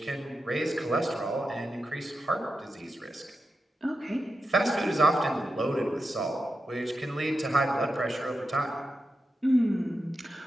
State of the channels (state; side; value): normal; both; correlation 0.89